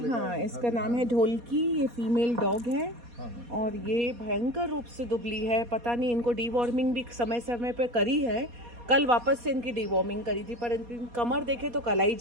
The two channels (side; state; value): left; late; 4.2 ms